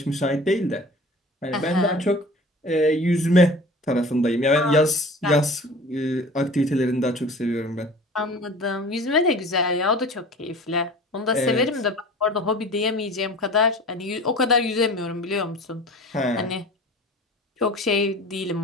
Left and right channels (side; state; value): both; normal; correlation 0.41